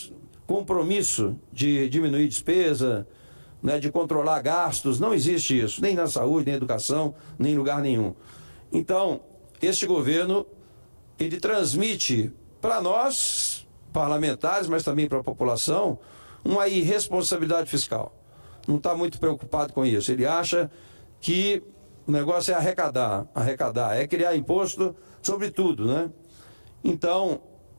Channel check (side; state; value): both; inverted; correlation -1.00